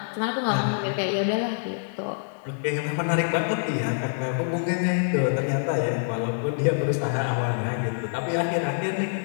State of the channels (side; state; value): right; silent; 61 dB below the other